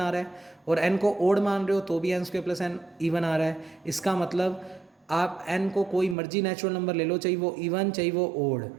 आ रहा है, और n को ओड मान रहे हो तो भी n square plus n even आ रहा है। इसका मतलब आप n को कोई मर्जी नेचुरल नंबर ले लो, चाहिए वो इवन चाहिए वो odd,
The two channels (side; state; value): left; drops out; at 6.2 s